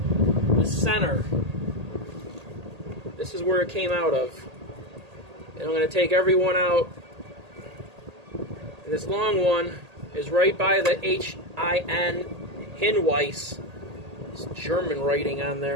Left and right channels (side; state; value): left; late; 1.8 ms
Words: the center. This is where it came out of. And I'm going to take every one out. And this long one is right by the H-I-N, Hinweis. It's German writing on